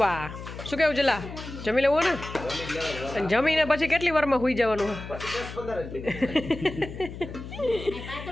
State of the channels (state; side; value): noise; left; hum, 11 dB below the sound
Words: શું કેવું જલા? જમી લેવું ને? અને જમીને પછી કેટલી વારમાં સુઈ જવાનું?